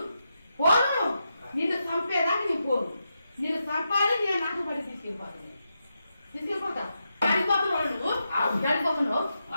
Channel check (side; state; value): both; inverted; correlation -0.86